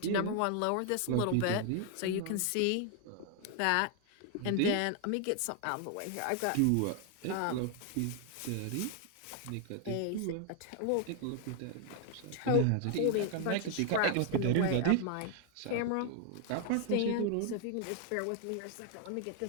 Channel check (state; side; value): different; both; correlation 0.00